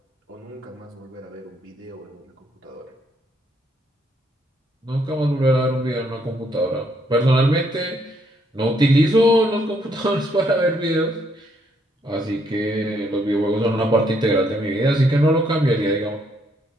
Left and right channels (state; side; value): normal; both; correlation 0.71